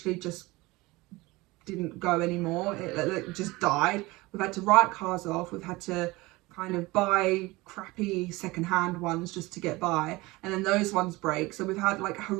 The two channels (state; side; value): quieter; left; 21.5 dB